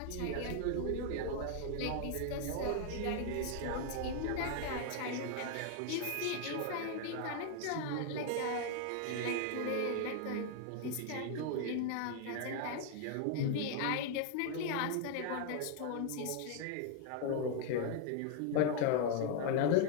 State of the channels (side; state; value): both; different; correlation 0.00